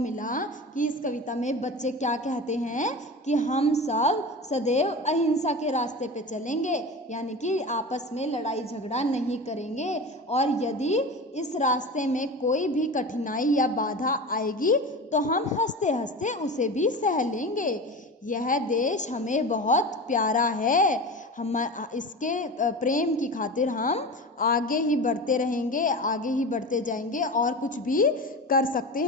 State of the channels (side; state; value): both; normal; correlation 0.30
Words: कि इस कविता में बच्चे क्या कहते हैं कि हम सब सदैव अहिंसा के रास्ते पे चलेंगे, यानी कि आपस में लड़ाई झगड़ा नहीं करेंगे, और यदि इस रास्ते में कोई भी कठिनाई या बाधा आएगी तो हम हंसते हंसते उसे भी सह लेंगे। यह देश हमें बहुत प्यारा है, हम इसके प्रेम की खातिर हम आगे ही बढ़ते रहेंगे, आगे ही बढ़ते जाएंगे और कुछ भी कर सकते